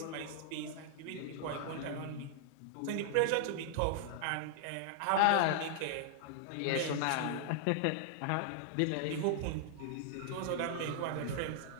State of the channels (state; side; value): different; both; correlation -0.01